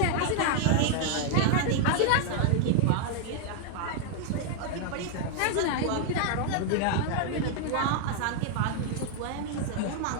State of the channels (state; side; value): different; both; correlation 0.00